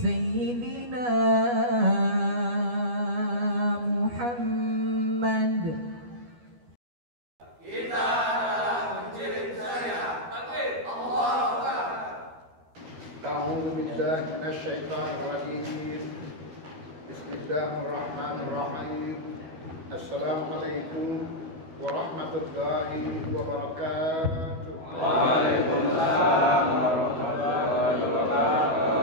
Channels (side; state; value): left; late; 12 ms